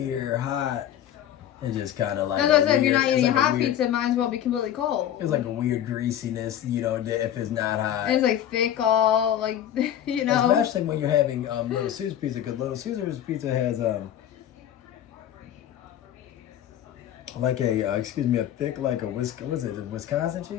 hot, it's just kind of like. That's what I said. If you're not eating hot pizza, it might as well be completely cold. It's like a weird greasiness, you know, if it's not hot. And it's like thick, all like, you know. Especially when you're having Little Caesars pizza, because Little Caesars pizza has like a thick like a Wisconsin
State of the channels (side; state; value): right; quieter; 10.9 dB